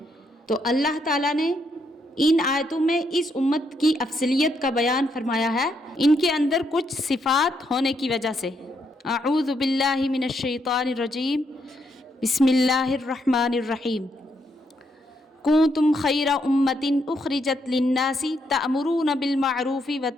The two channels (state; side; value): normal; both; correlation 0.76